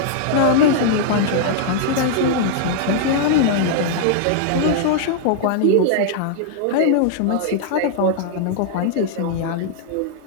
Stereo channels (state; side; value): different; both; correlation -0.01